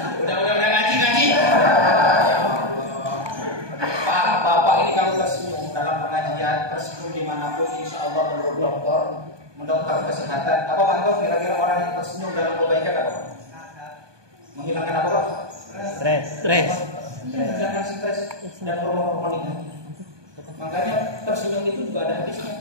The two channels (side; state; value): left; late; 1.2 ms